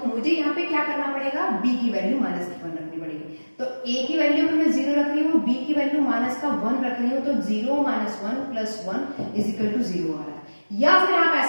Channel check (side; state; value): both; inverted; correlation -1.00